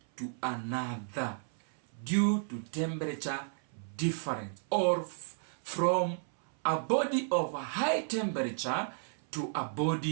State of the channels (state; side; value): silent; left; 56 dB below the other